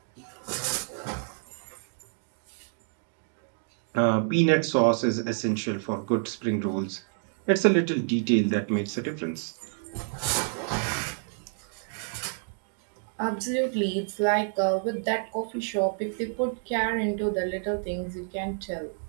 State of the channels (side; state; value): left; silent; 59 dB below the other